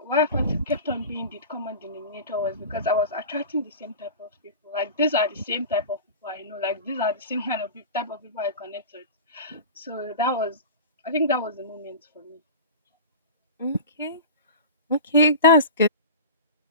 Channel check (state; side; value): inverted; both; correlation -0.32